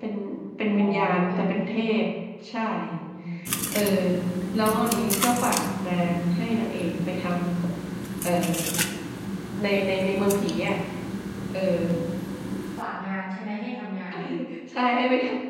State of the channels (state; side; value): identical; both; correlation 1.00